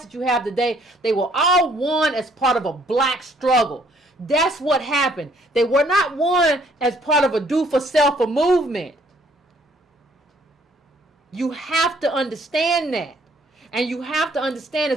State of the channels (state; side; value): normal; both; correlation 0.63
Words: that you have today, they were all won as part of a black struggle. That's what happened. They were not won as part of a do-for-self movement. You have to understand that. And you have to understand,